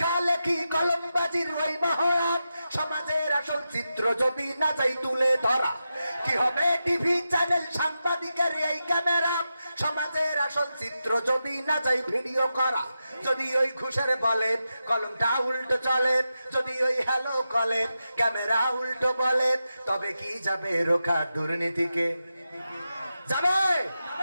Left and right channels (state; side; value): inverted; both; correlation -0.90